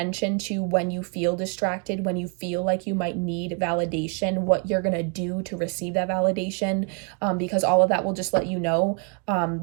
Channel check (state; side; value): quieter; left; 37.8 dB